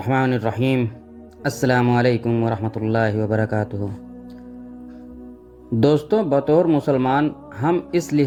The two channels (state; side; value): identical; both; correlation 1.00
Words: الرحیم۔ السلام علیکم ورحمۃ اللہ وبرکاتہ۔ دوستوں، بطور مسلمان ہم اس